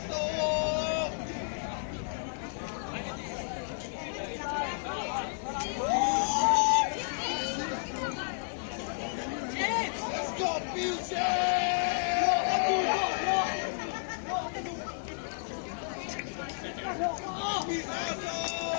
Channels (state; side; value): silent; right; 57 dB below the other